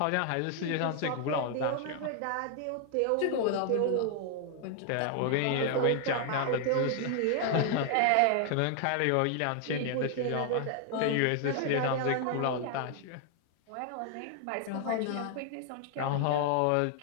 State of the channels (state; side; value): different; both; correlation 0.00